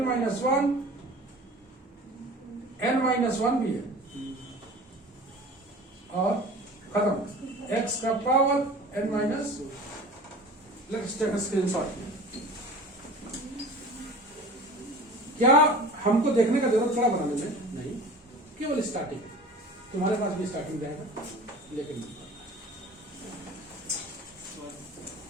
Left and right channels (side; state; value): both; normal; correlation 0.40